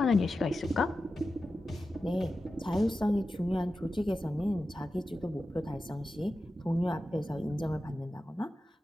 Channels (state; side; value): normal; both; correlation 0.92